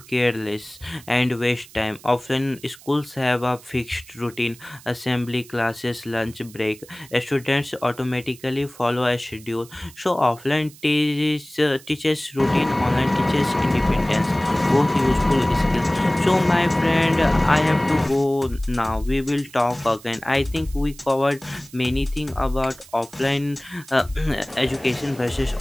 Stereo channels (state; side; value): noise; right; hiss, 21 dB below the sound